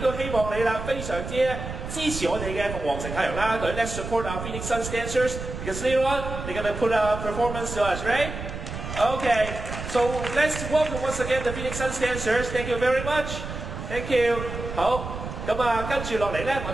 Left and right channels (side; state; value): right; noise; rumble, 7 dB below the sound